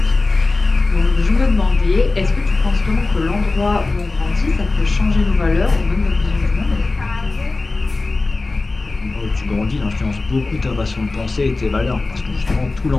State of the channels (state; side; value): quieter; right; 3.4 dB